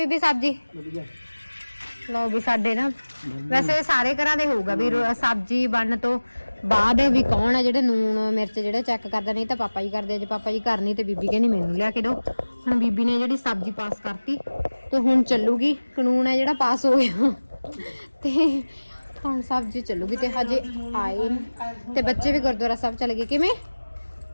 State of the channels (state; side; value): inverted; both; correlation -1.00